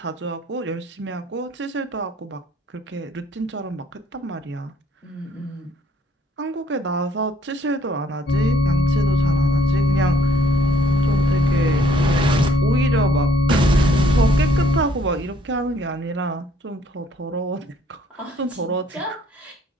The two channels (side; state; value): both; normal; correlation 0.64